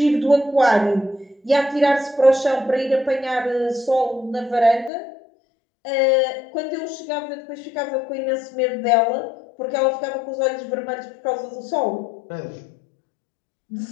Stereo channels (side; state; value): right; drops out; at 4.9 s